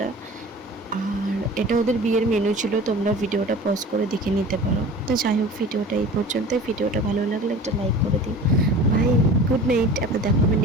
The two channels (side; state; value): both; normal; correlation 0.40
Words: আর এটা ওদের বিয়ের মেনু ছিল, তোমরা ভিডিওটা পজ করে দেখে নিতে পারো। তো যাই হোক, ভিডিওটা এই পর্যন্ত। ভিডিওটা ভালো লাগলে একটা লাইক করে দিও। Bye, good night. আবার দেখা হবে